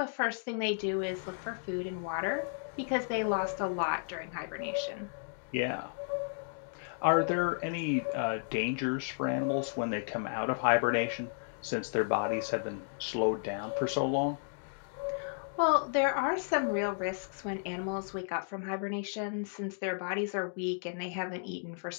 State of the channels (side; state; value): right; silent; digital silence